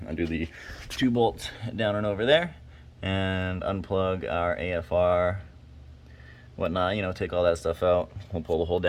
undo the 2 bolts down and over there, and unplug our AFR, whatnot, you know, take all that stuff out. We'll pull the whole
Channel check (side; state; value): both; identical; correlation 1.00